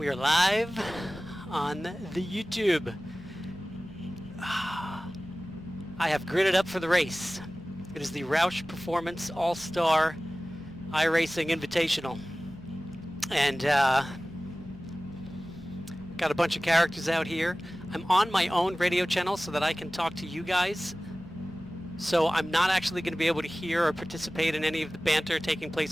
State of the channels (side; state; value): both; normal; correlation 0.97